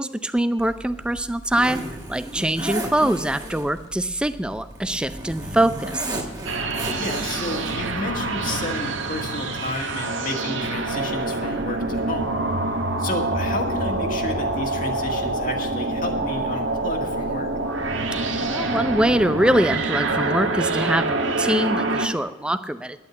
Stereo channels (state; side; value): normal; both; correlation 0.45